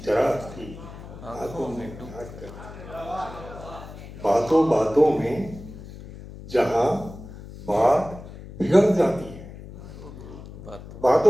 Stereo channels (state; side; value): noise; left; hum, 14 dB below the sound